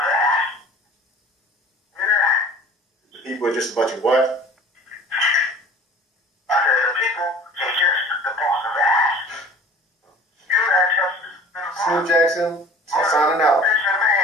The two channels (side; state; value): both; normal; correlation 0.45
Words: that. The people are just a bunch of what?